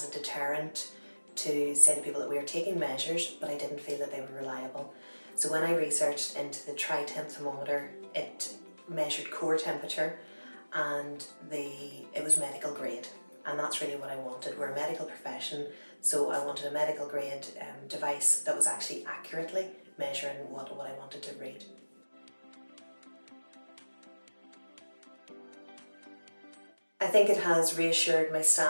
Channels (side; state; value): both; inverted; correlation -1.00